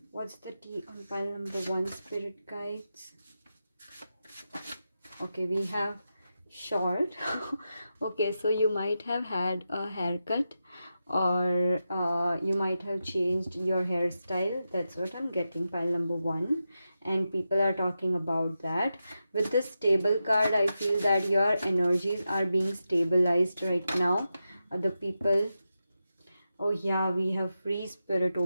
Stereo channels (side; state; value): both; inverted; correlation -0.89